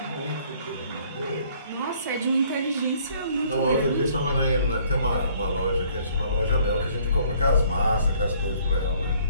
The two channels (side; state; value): both; inverted; correlation -0.61